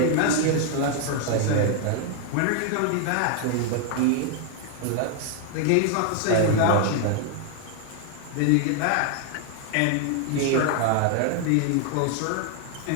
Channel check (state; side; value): different; both; correlation 0.00